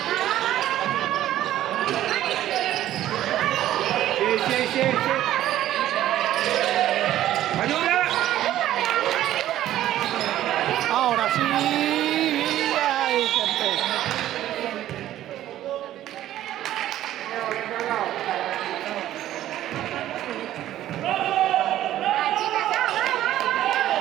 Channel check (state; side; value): quieter; left; 13.1 dB